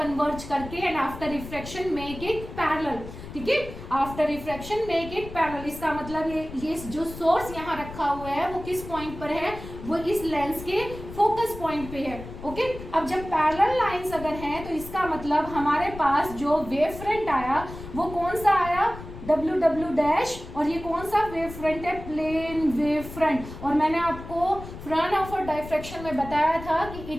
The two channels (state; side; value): noise; left; rumble, 12 dB below the sound